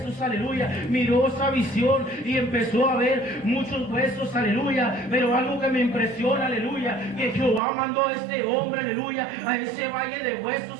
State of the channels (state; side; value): drops out; left; at 7.6 s